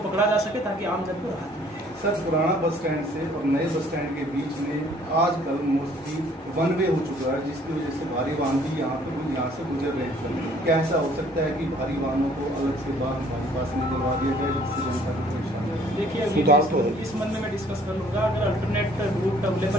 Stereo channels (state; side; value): normal; both; correlation 0.58